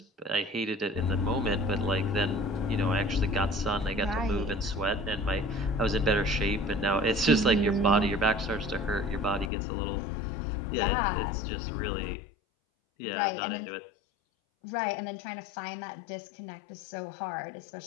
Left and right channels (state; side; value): drops out; right; at 9.5 s